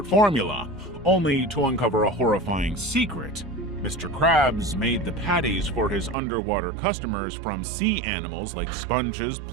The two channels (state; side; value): drops out; left; at 6.2 s